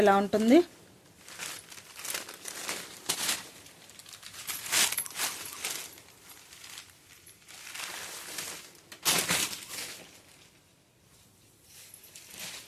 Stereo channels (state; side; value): identical; both; correlation 1.00